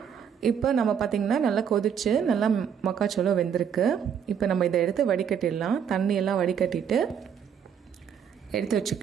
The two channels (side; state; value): left; quieter; 7.9 dB